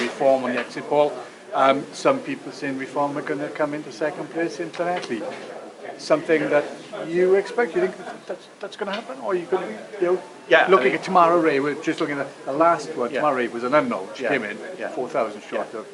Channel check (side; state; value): both; identical; correlation 1.00